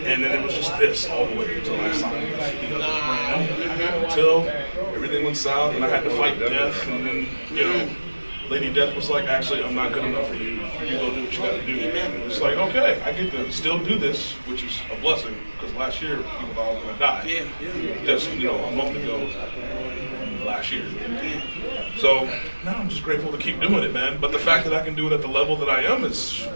and then it was just this all the way until I signed with the other brand, until everything went south and I had to fight death, and then, you know, Lady Death was like, actually, I'm not good enough for you. You go do what you got to do. It's like, okay, I get to still do this, which is a blessing, because last year people thought I was going to die. Just, you know, a month ago, last year. So now I'm just grateful to keep doing it, man. But the fact that I can do it at the level that I am is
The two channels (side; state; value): both; inverted; correlation -1.00